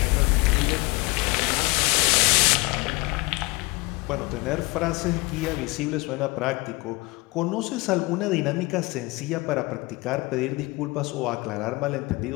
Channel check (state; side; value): quieter; right; 24.7 dB